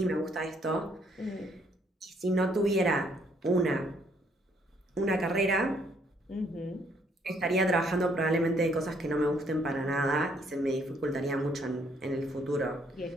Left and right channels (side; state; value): both; normal; correlation 0.68